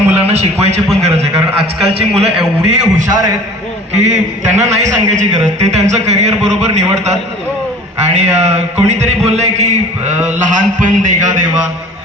शिकवायची पण गरज आहे, कारण आजकालची मुलं एवढी हुशार आहेत की त्यांना नाही सांगायची गरज. ते त्यांचं करिअर बरोबर निवडतात. आणि कोणीतरी बोललंय की लहानपण देगा देवा.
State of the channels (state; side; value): normal; both; correlation 0.45